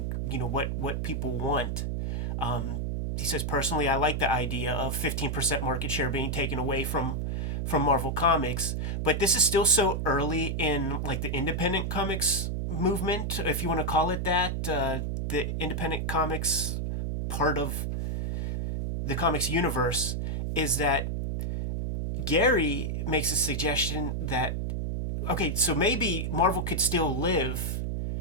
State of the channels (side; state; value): right; noise; hum, 1 dB below the sound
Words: what people want. He says, personally, I like the idea of 15% market share being taken away from Marvel Comics, but this is still so early in like the independent comics movement, if you want to call it that, the independent comics part of the comics universe, is that Gary makes a suggestion that, okay, so maybe Marvel could still live